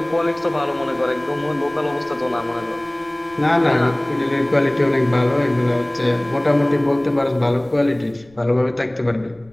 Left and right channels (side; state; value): left; noise; rumble, 27 dB below the sound